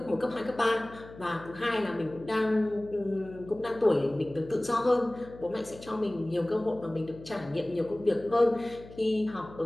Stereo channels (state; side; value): noise; left; hum, 18 dB below the sound